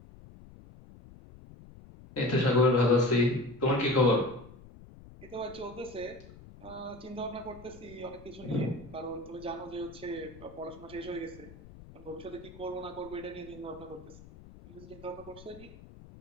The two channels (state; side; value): noise; left; rumble, 19 dB below the sound